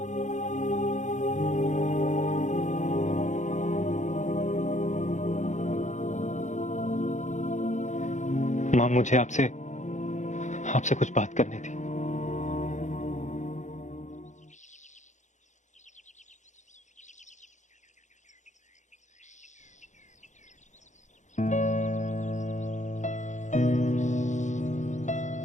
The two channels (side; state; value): right; late; 0.35 ms